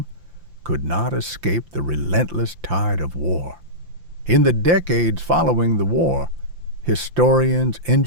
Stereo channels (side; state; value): left; late; 5.8 ms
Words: could not escape the relentless tide of war. In the decades following the war, historians,